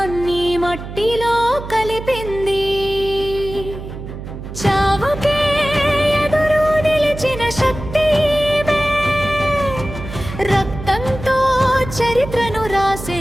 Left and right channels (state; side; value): noise; right; hum, 10 dB below the sound